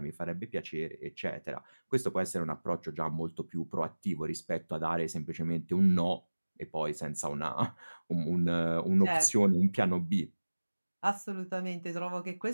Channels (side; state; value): both; inverted; correlation -1.00